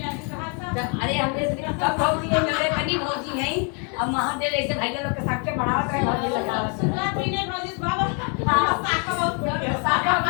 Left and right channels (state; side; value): quieter; right; 37.6 dB